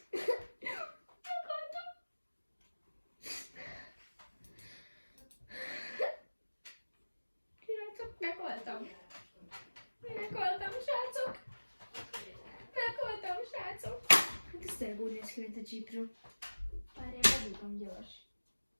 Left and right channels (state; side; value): inverted; both; correlation -1.00